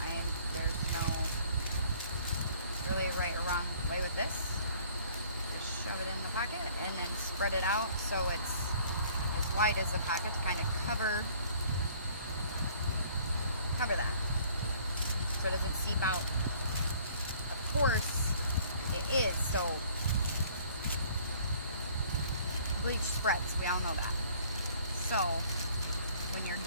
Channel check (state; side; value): inverted; both; correlation -0.56